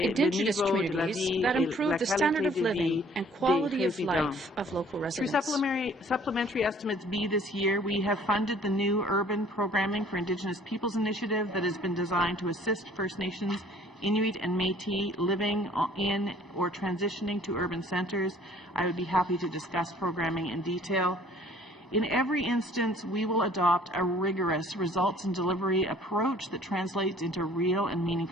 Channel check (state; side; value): normal; both; correlation 0.56